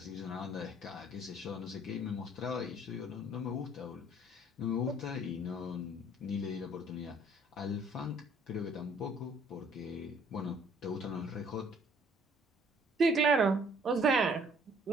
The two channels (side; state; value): both; normal; correlation 0.59